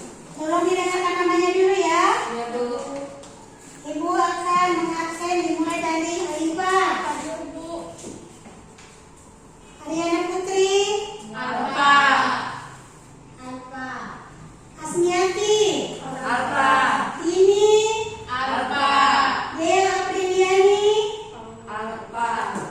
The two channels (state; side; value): identical; both; correlation 1.00